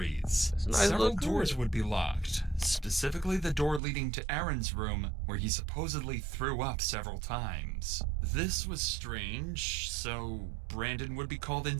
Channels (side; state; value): left; drops out; at 3.8 s